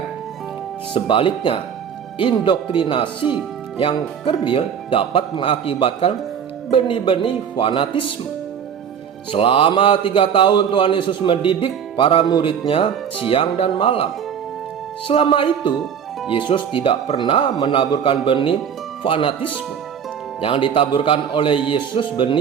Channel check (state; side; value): quieter; left; 7.9 dB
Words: Sebaliknya, indoktrinasi yang kerdil dapat mengakibatkan benih-benih fanatisme. Selama 3 tahun Tuhan Yesus mendidik para muridnya siang dan malam. Selama itu, Yesus tidak pernah menaburkan benih fanatisme. Yang ditaburkan oleh Yesus